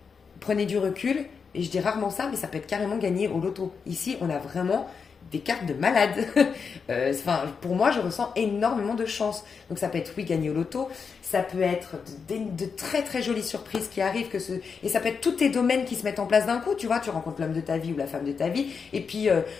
prenez du recul, et je dis rarement ça, mais ça peut être carrément gagné au loto. Ici, on a vraiment des cartes de malade. Pour moi, je ressens énormément de chance. Donc ça peut être, oui, gagner au loto, ça peut être de très très jolies surprises qui arrivent, et ça peut être tous tes domaines qui se mettent en place d'un coup. Tu vois, tu rencontres l'homme de ta vie ou la femme de ta vie, et puis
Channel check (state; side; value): quieter; right; 5.7 dB